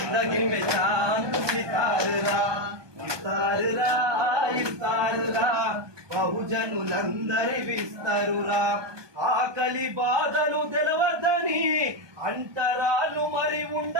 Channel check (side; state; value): left; late; 1.2 ms